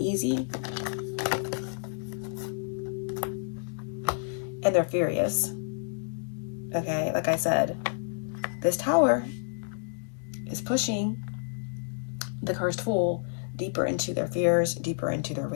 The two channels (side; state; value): right; silent; digital silence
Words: And they're furious. Okay, like I said, this Tower is pushing the cursed fool deeper into their fears, deeper into their